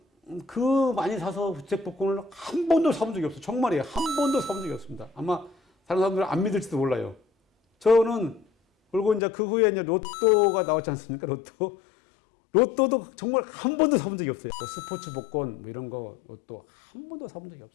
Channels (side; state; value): right; drops out; at 9.2 s